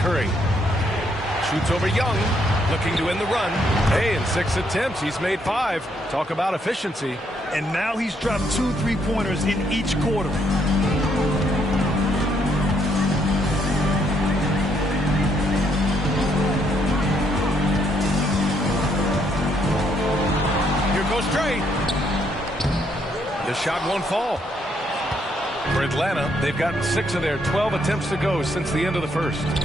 Shoots over Young. Looking to end the run. Hey, in 6 attempts, he's made 5. Talk about efficiency. And now he's dropped 2 3-pointers in each quarter. Here goes Trey. The shot won't fall. For Atlanta, they've gotten 6 of their 12 attempts to go since the end of the first.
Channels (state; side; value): normal; both; correlation 0.72